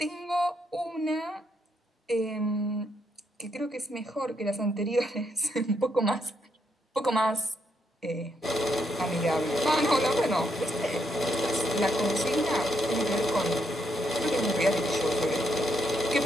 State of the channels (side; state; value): both; normal; correlation 0.77